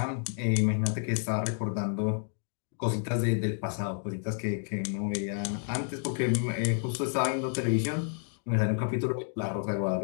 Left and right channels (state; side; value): silent; right; digital silence